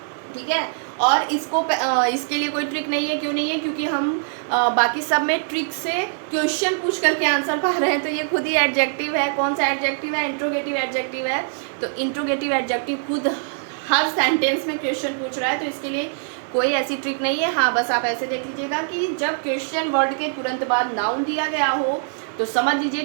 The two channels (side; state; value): left; silent; digital silence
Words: ठीक है। और इसको इसके लिए कोई ट्रिक नहीं है। क्यों नहीं है? क्योंकि हम बाकी सब में ट्रिक से क्वेश्चन पूछ करके आंसर पा रहे हैं, तो ये खुद ही एडजेक्टिव है। कौन सा एडजेक्टिव है? इंट्रोगेटिव एडजेक्टिव है। तो इंट्रोगेटिव एडजेक्टिव खुद हर सेंटेंस में क्वेश्चन पूछ रहा है, तो इसके लिए कोई ऐसी ट्रिक नहीं है। हाँ, बस आप ऐसे देख लीजिएगा कि जब क्वेश्चन वर्ड के तुरंत बाद नाउन दिया गया हो तो समझ लीजिए